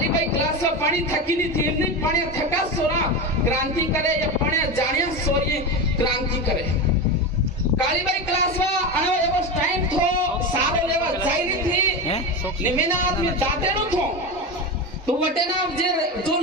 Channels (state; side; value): normal; both; correlation 0.20